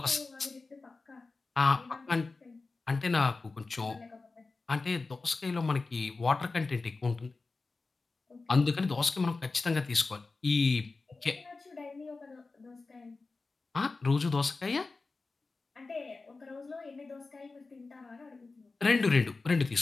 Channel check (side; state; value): right; quieter; 3.8 dB